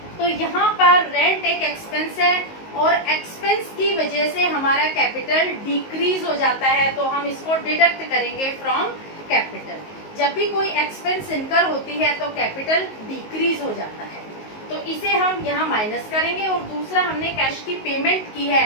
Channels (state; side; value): late; right; 19 ms